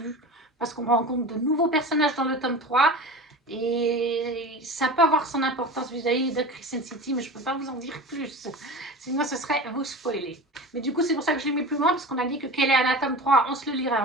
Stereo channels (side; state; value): both; normal; correlation 0.32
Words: parce qu'on rencontre de nouveaux personnages dans le tome 3, et ça peut avoir son importance vis-à-vis de Crescent City, mais je ne peux pas vous en dire plus, sinon ce serait vous spoiler. Mais du coup, c'est pour ça que je l'ai mis plus loin, parce qu'on a dit que Keleana tome 3, on se le lirait